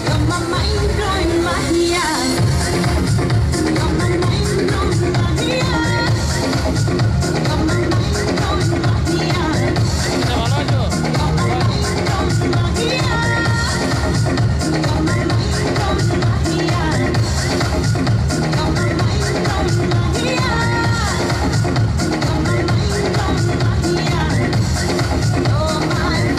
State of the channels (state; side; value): identical; both; correlation 1.00